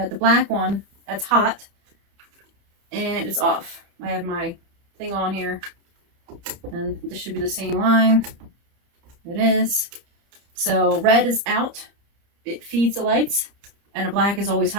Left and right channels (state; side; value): late; left; 30 ms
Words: the black one, that's hot, and it's off. I have my thing on here, and this should be the same line. It is. So red is out. It feeds the lights. And a black is always